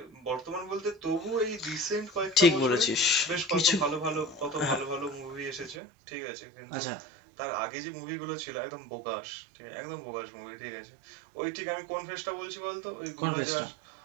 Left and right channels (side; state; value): left; drops out; at 5.8 s